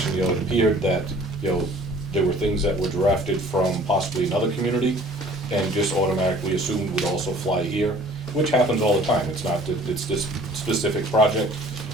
it appeared that, there were things that were drafted from possibly another community and just automatically assumed would also fly here, which happens all the time, it's not that it's this specific project.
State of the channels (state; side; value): normal; both; correlation 0.51